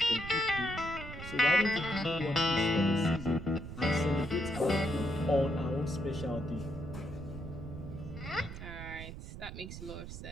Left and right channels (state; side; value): noise; right; rumble, 10 dB below the sound